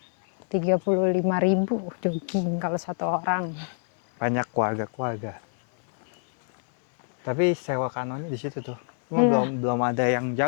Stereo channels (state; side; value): silent; right; digital silence